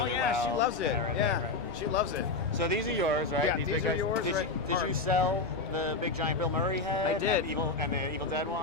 well. She loves it. Right. She loves it. So these are yours, right? Yeah, these these big are guys. yours, Did you sell the big giant Bill Murray head I did. and the Evil Dead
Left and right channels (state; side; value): quieter; right; 3.7 dB